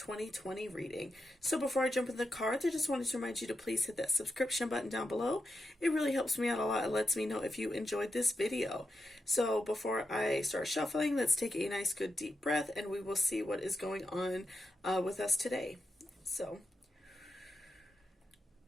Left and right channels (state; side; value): normal; both; correlation 0.86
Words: reading. So before I jump in the cards, I just wanted to remind you to please hit that subscription button down below. It really helps me out a lot. It lets me know if you enjoyed this video. So before I start shuffling, let's take a nice good deep breath and we will see what is going on with us today.